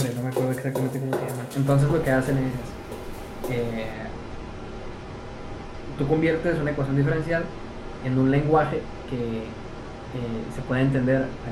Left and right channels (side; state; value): both; identical; correlation 1.00